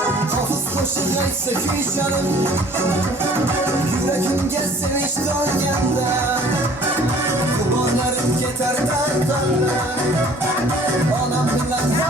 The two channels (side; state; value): both; normal; correlation 0.53